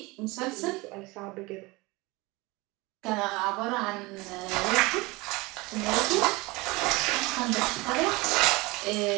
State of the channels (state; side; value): quieter; left; 23.4 dB